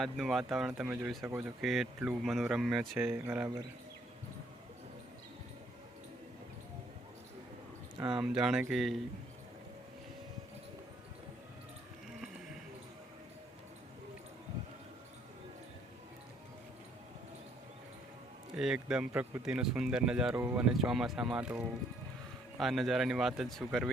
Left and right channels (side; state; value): both; normal; correlation 0.66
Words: વાતાવરણ તમે જોઈ શકો છો કે એટલું મનોરમ્ય છે, બરાબર। આમ જાણે કે એકદમ પ્રકૃતિનો સુંદર નજારો અને ચોમાસામાં તો આ નજારાની વાત જ શું